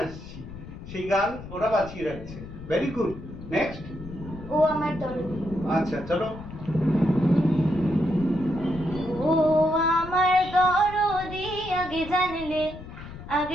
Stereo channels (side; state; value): left; noise; rumble, 13 dB below the sound